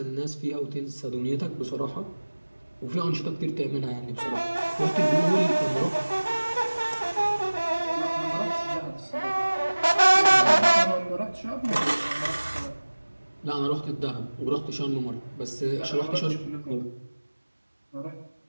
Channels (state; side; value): inverted; both; correlation -1.00